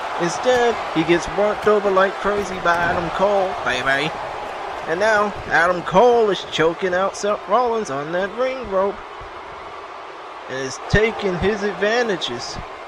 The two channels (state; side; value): identical; both; correlation 1.00